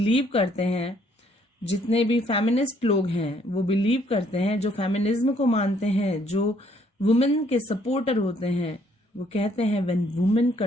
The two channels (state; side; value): normal; both; correlation 0.66